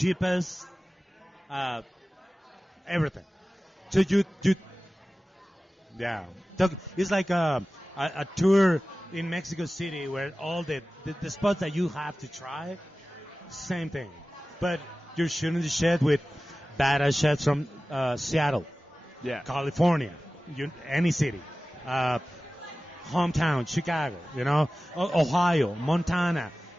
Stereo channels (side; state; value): both; normal; correlation 0.96